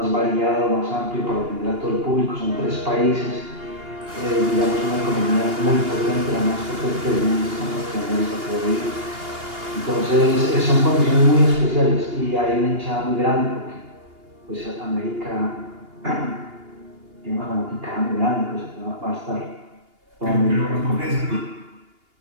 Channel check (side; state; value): left; late; 2.8 ms